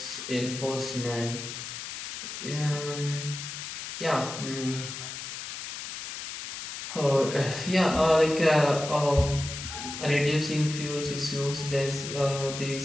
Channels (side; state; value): left; noise; hiss, 8 dB below the sound